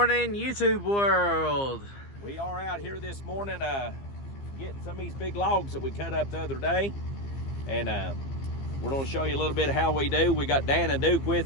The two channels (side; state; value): right; late; 15 ms